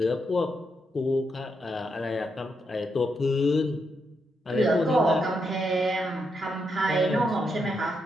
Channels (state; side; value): normal; both; correlation 0.81